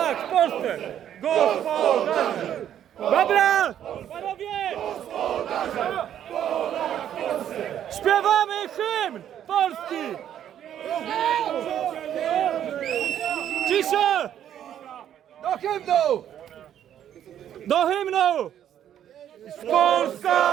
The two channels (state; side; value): quieter; left; 10.3 dB